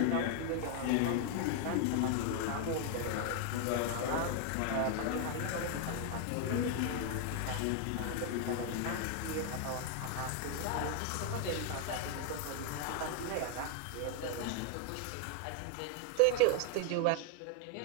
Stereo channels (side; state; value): both; different; correlation 0.01